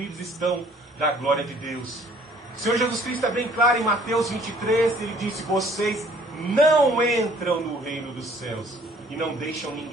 estão da glória de Deus. O Senhor Jesus Cristo é bem claro em Mateus 23, ele disse: vocês não entram no reino dos céus e não deixam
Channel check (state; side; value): normal; both; correlation 0.57